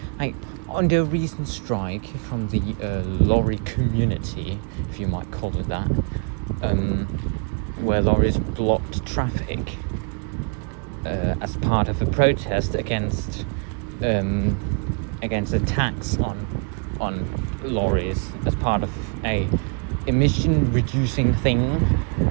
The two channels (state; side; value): quieter; left; 38.3 dB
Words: Like, under a recent strike from the lorry community, if you might call it that, where lorries blocked traffic as part of a protest against attacks on lorries as part of a emission reducing thing.